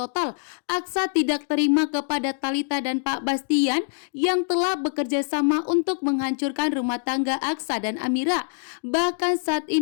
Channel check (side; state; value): right; silent; digital silence